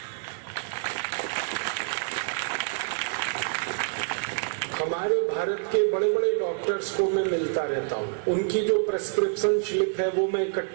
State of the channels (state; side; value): silent; left; digital silence